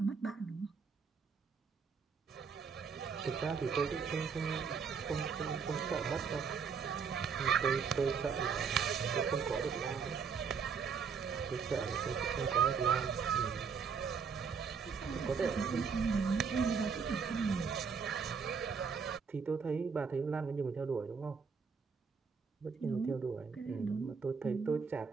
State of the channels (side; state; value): left; quieter; 5.9 dB